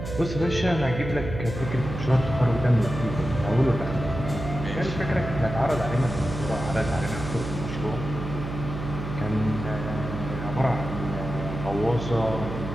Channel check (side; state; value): right; noise; hum, 7 dB below the sound